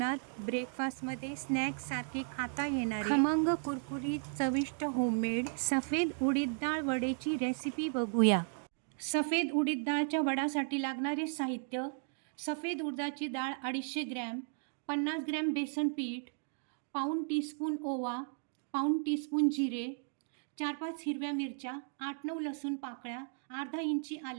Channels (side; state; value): left; silent; 54 dB below the other